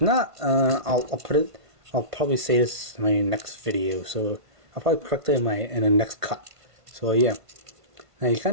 not, I'll put it. I'll probably say this in my next video. So I'll probably correct it in the next cut. So yeah, now you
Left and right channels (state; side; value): late; left; 1.5 ms